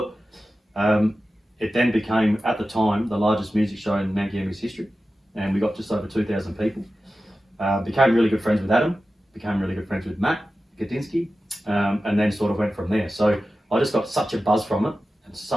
It then became, at the time, the largest music show in Mount Gambier's history, and we got just over 2,000 people. Became really good friends with Adam, became really good friends with Matt Gudinski, and then sort of went from there. So I just got such a buzz from it, and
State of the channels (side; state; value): both; normal; correlation 0.94